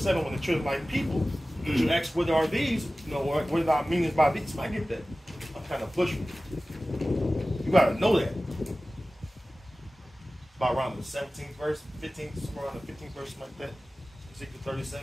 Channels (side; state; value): both; normal; correlation 0.96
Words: when the children like people, you ask what are these, you know, what are our meanings by these? I get that. I'm kind of pushing. You gotta know that. About around the 17th verse, 15th, somewhere around the 15th verse, like that. Ezekiel